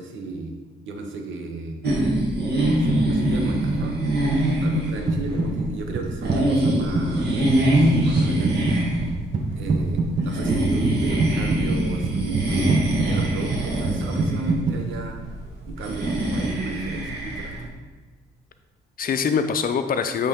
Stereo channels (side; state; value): both; normal; correlation 0.69